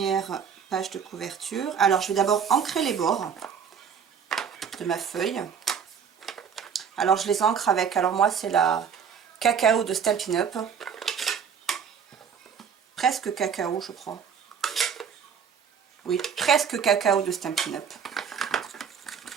page de couverture. Alors je vais d'abord ancrer les bords de ma feuille. Alors je les ancre avec, alors moi c'est la cacao de Stampin' Up. Presque cacao je crois. Oui, presque cacao de Stampin' Up.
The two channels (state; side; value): quieter; left; 7.2 dB